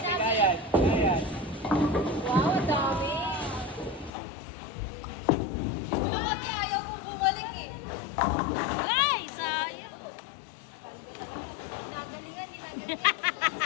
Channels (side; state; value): right; drops out; at 4.1 s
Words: kaya. Wow, ang dami. Ano kasi ayaw kong bumalik eh. Ay, sayang. Ginagalingan. Kasi